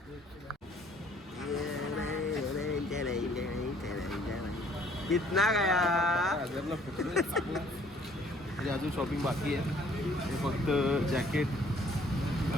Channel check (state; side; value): normal; both; correlation 0.60